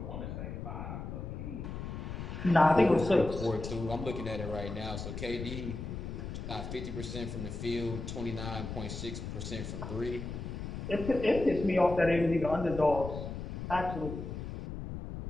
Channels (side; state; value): left; noise; rumble, 7 dB below the sound